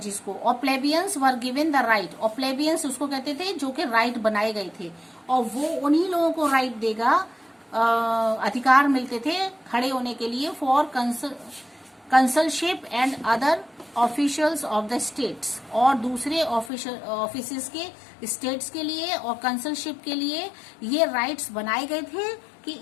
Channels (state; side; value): drops out; right; at 16.7 s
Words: और प्लेबियंस वर गिवन द राइट, और प्लेबियंस उसको कहते थे जो कि राइट बनाए गए थे, और वो उन्हीं लोगों को राइट देगा, अधिकार मिलते थे खड़े होने के लिए for consulship and other officials of the states, और दूसरे ऑफिस के स्टेट्स के लिए और कंसलशिप के लिए ये राइट्स बनाए गए थे कि